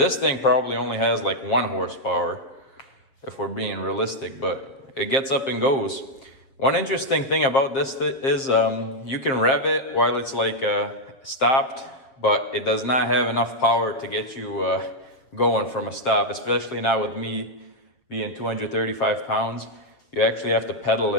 thing probably only has like 1 horsepower if we're being realistic, but it gets up and goes. One interesting thing about this is you can rev it while it's like stopped, but it does not have enough power to get you going from a stop, especially now with me being 235 pounds. You actually have to pedal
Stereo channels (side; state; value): right; late; 7.5 ms